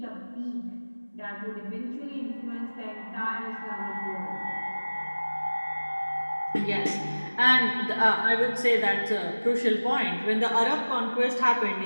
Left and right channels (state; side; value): inverted; both; correlation -1.00